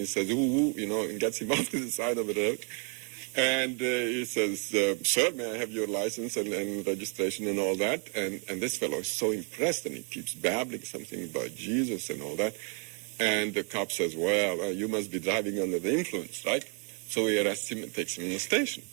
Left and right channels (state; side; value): quieter; left; 39.1 dB